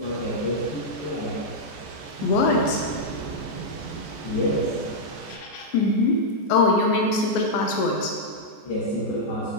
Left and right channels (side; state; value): right; late; 14 ms